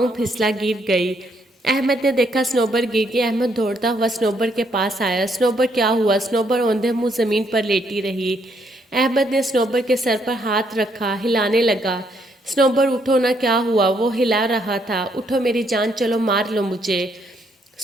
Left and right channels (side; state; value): both; normal; correlation 0.72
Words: پھسلا گر گئی۔ احمد نے دیکھا سنوبر گر گئی۔ احمد دوڑتا ہوا سنوبر کے پاس آیا۔ سنوبر کیا ہوا؟ سنوبر اوندھے منہ زمین پر لیٹی رہی۔ احمد نے سنوبر کے سر پر ہاتھ رکھا، ہلانے لگا۔ سنوبر اٹھو نا، کیا ہوا؟ وہ ہلا رہا تھا۔ اٹھو میری جان، چلو مار لو مجھے۔